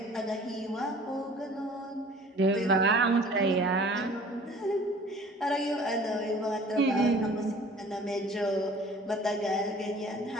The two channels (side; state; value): both; normal; correlation 0.49